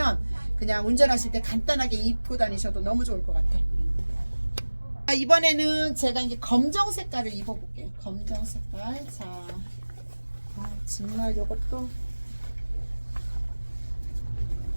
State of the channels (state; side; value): inverted; both; correlation -1.00